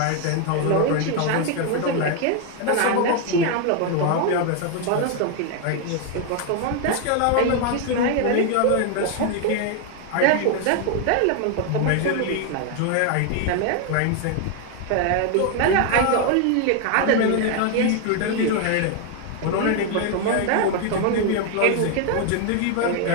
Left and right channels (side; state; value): both; different; correlation 0.01